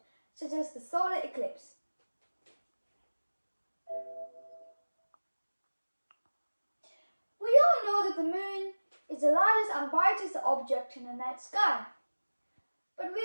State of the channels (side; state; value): both; inverted; correlation -1.00